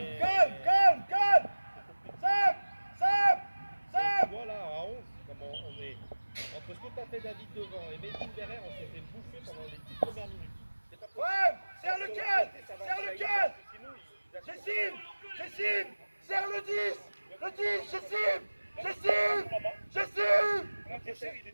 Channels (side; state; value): both; inverted; correlation -1.00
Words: Sam. Voilà, à 11, comment on est. Entre ce que t'as fait David devant et Medine derrière, on s'est fait bouffer pendant les 10 premières minutes. C'est pas possible. Ouais, serre le 15. Ça va, Serre le ça 15. ira, sinon, il a- J'estime. Serre le 10. Le 10, j'estime. Mon adversaire, il est